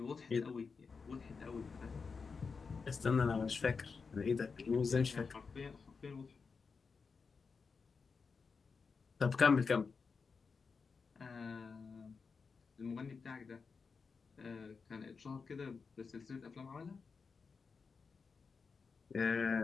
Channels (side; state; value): right; quieter; 5.1 dB